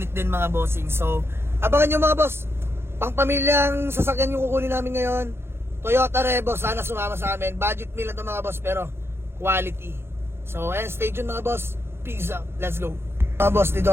din mga bossing. So abangan nyo mga boss, pang pamilyang sasakyan yung kukunin namin ngayon, Toyota Revo. Sana sumama sa amin. Budget meal lang ito mga boss, pero quality. So ayan, stay tuned mga boss. Peace out, let's go. Mga boss,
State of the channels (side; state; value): left; late; 0.12 ms